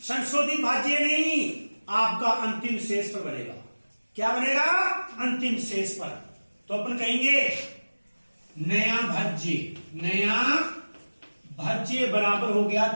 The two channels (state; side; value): inverted; both; correlation -1.00